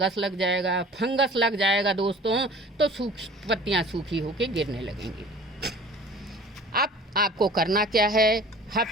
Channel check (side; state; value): both; normal; correlation 0.45